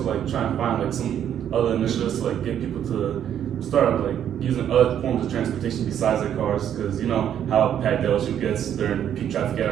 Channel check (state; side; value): quieter; left; 9.7 dB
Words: like try and find like some other initiatives to like get people to start like using other forms of transportation besides their cars, because you know how packed LSU gets during peak traffic